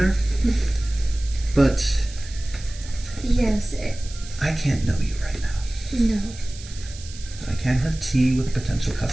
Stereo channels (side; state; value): right; noise; hiss, 16 dB below the sound